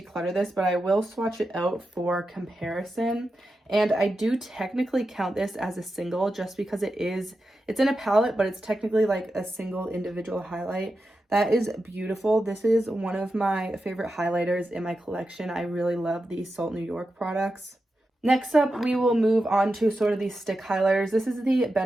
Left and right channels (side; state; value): both; normal; correlation 0.90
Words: this, but I will swatch it out for comparison. And I do technically count this as a single just because it's in a palette, but it's technically like a single individual highlight. That is beautiful. This is one of my favorite highlighters in my collection. I really love these Salt New York products. Next up, we will move on to sort of these stick highlighters. This is the